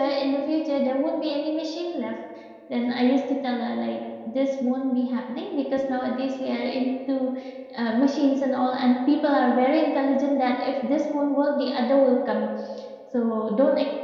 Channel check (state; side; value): identical; both; correlation 1.00